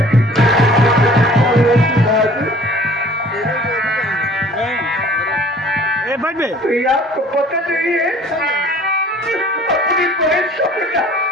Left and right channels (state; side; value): normal; both; correlation 0.51